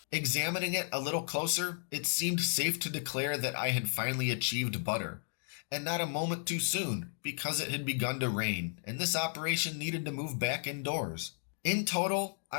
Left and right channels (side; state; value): right; silent; 55 dB below the other